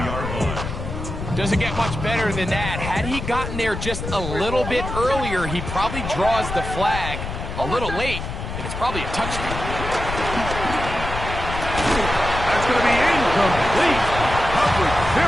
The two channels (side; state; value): left; noise; rumble, 6 dB below the sound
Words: Doesn't get much better than that. Had he gotten there just a little bit earlier, he probably draws the flag a little late, and it's probably a touchdown. That's going to be incomplete. Coverage